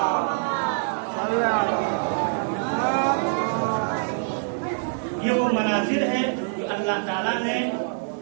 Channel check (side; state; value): left; silent; 55 dB below the other